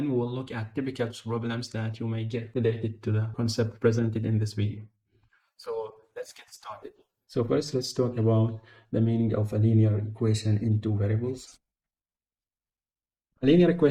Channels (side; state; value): both; identical; correlation 1.00